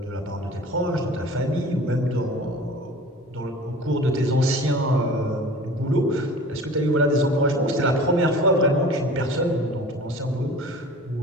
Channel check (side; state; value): both; normal; correlation 0.42